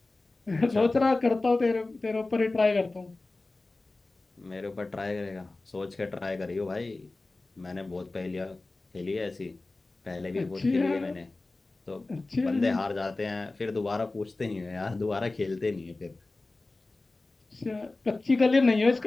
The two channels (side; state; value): right; quieter; 3.2 dB